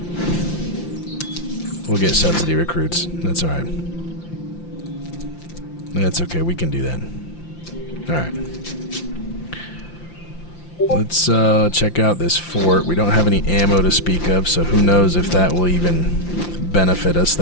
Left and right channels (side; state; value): right; late; 5.8 ms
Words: We'll get subsidy recruits. That's alright. That's okay, we can do that. Alright. Let's check out this fort. We don't have any ammo to speak of, so who knows if that will even benefit us